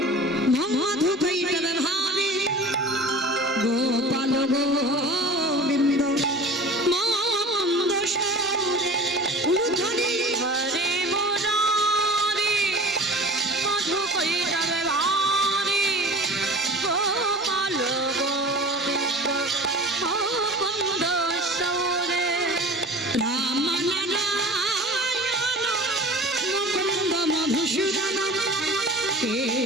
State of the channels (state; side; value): normal; both; correlation 0.39